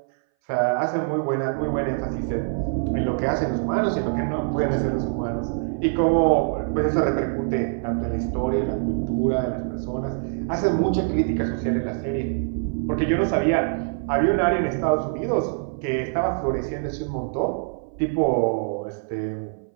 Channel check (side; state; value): left; silent; 60 dB below the other